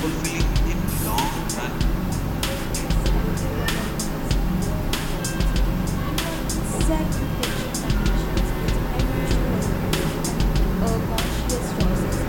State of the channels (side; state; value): both; identical; correlation 1.00